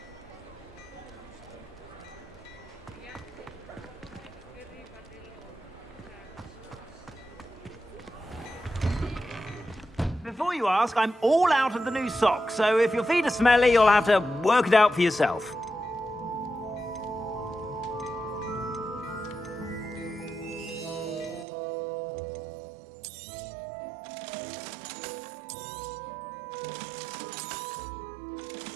Before you ask, I'm all out of the new socks, so if your feet are smelly, you'll have to work it out for yourself.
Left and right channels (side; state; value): left; drops out; at 21.5 s